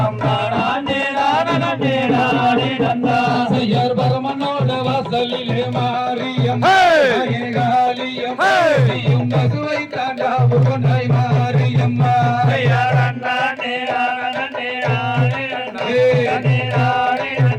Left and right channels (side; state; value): both; identical; correlation 1.00